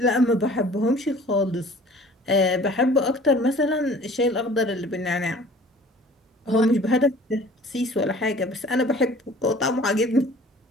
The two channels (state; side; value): normal; both; correlation 0.48